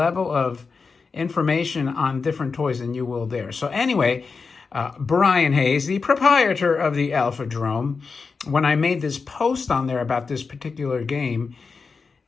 of information on different toys than you will there. So anyway, Brian Hayes, the proprietor of the Alphadrome, when I made this post on there about this particular game,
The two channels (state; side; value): quieter; right; 4.8 dB